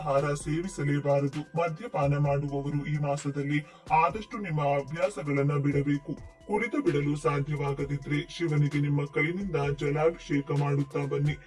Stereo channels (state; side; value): identical; both; correlation 1.00